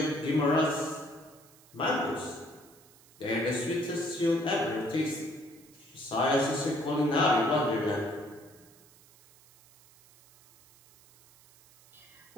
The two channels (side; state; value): right; noise; hiss, 26 dB below the sound